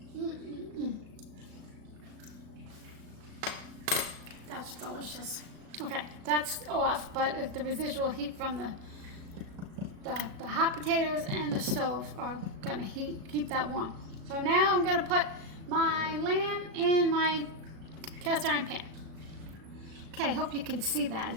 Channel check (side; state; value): left; late; 36 ms